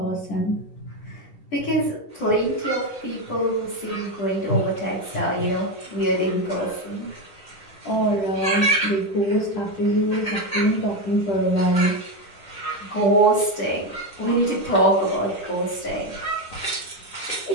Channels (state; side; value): late; right; 10 ms